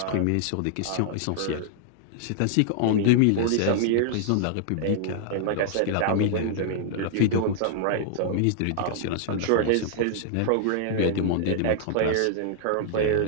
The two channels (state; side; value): different; both; correlation -0.01